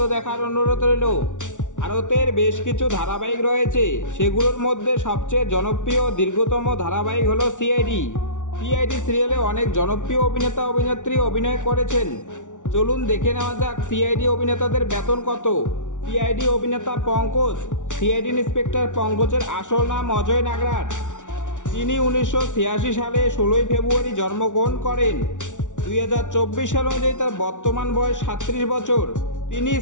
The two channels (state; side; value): late; right; 0.86 ms